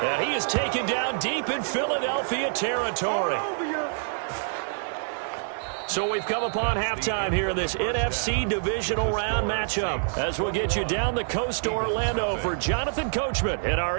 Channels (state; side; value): silent; left; digital silence